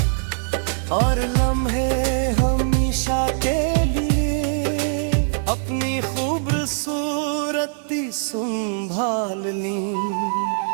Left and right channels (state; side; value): silent; left; digital silence